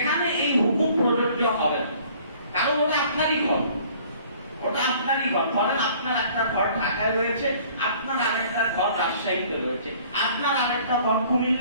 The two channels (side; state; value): both; inverted; correlation -0.54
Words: এই হুকুম প্রযোজ্য হবে না, কারণ ওটা আপনারই ঘর, ওটা আপনারই ঘর। ধরেন আপনার একটা ঘর ঢাকায় রয়েছে, আপনার আরেকটা ঘর রাজশাহীতে রয়েছে, আপনার আরেকটা ঘর